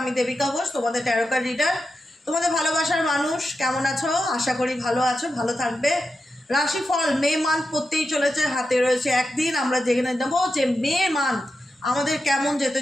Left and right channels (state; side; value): normal; both; correlation 0.89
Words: দেবিকা ঘোষ, তোমাদের ট্যারোকার রিডার। তোমাদের ভালোবাসার মানুষ কেমন আছো? আশা করি ভালো আছো, ভালো থাকবে। রাশিফল মে মান্থ পড়তেই চলেছে, হাতে রয়েছে একদিন। আমরা জেনে নেবো যে মে মান্থ আমাদের কেমন যেতে